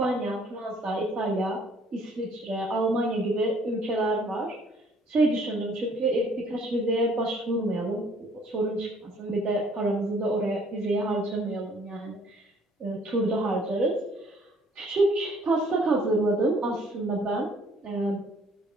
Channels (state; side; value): normal; both; correlation 0.60